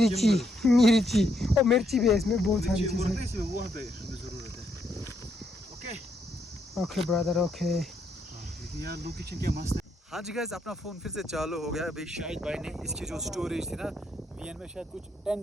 और मिर्ची भी है इसमें, बहुत सारी चीजें। इसमें वहाँ पे हमें ज़रूरत है। Okay okay brother okay. लेकिन यार लोकेशन क्या मस्त है। हाँ जी गाइस, अपना फ़ोन फिर से चालू हो गया। अभी शाहिद भाई ने इसकी जो स्टोरेज थी ना, VN में शायद कुछ 10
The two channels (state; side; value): normal; both; correlation 0.76